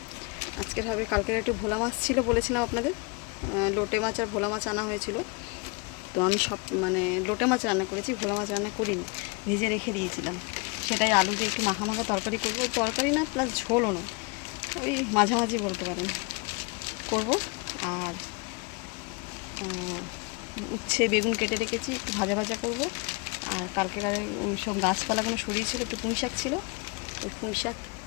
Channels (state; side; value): quieter; right; 31.0 dB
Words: আজকের হবে, কালকের একটু ভোলা মাছ ছিল বলেছিলাম আপনাদের, লোটে মাছ আর ভোলা মাছ আনা হয়েছিল। তো আমি সব লোটে মাছ রান্না করেছি, ভোলা মাছ রান্না করিনি, ভেজে রেখে দিয়েছিলাম। সেটাই আলু দিয়ে একটু মাখা মাখা তরকারি করবো, তরকারি না প্লাস ঝোলও না, ওই মাঝামাঝি বলতে পারেন করব। আর উচ্ছে বেগুন কেটে রেখেছি, একটু ভাজা ভাজা করবো। আর কালকেকারে ওই সব গাছপালাগুলো সরিয়েছিল, একটু পুঁই শাক ছিল, ওই পুঁই